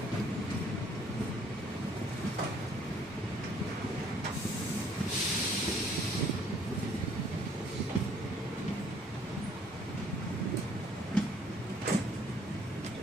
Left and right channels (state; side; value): noise; right; rumble, 24 dB below the sound